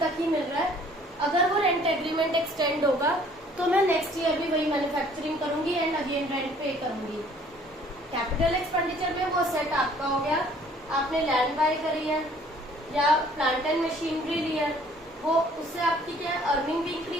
ही मिल रहा है. अगर वो रेंट एग्रीमेंट एक्सटेंड होगा तो मैं नेक्स्ट ईयर भी वही मैन्युफैक्चरिंग करूंगी एंड अगेन रेंट पे करूंगी. कैपिटल एक्सपेंडिचर में वो सेट आपका हो गया, आपने लैंड बाय करी है या प्लांट एंड मशीनरी ली है, वो उससे आपकी क्या अर्निंग भी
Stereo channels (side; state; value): both; normal; correlation 0.57